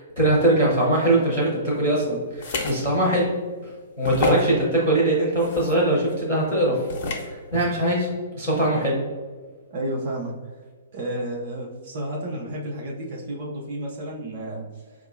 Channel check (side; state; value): both; inverted; correlation -0.31